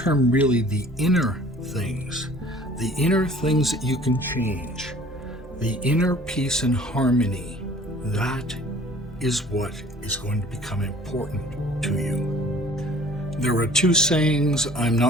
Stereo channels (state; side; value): normal; both; correlation 0.50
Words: really, the inner things that you can change, the inner peace and harmony, that is what is going to become important to you. There are two sayings, I'm